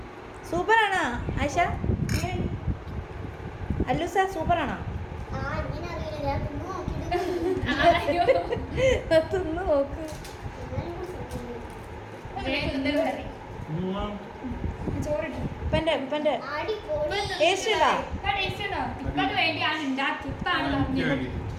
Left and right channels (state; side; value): identical; both; correlation 1.00